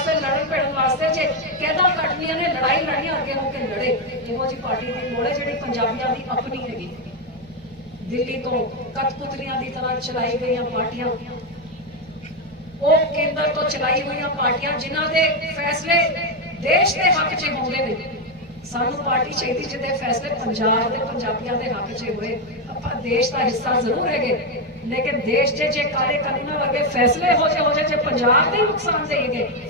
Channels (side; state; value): right; noise; hum, 24 dB below the sound